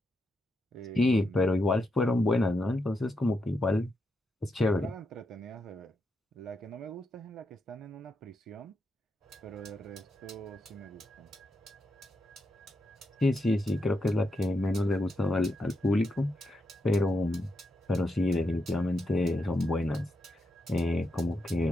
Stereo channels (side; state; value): both; normal; correlation 0.84